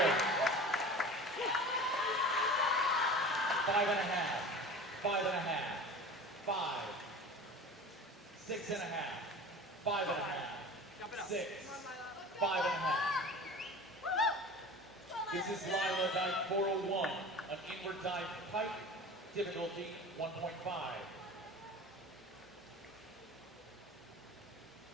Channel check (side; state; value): both; normal; correlation 0.37